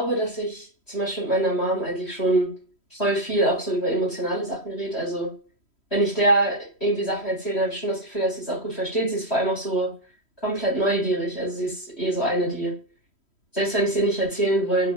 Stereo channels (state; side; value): late; right; 3.1 ms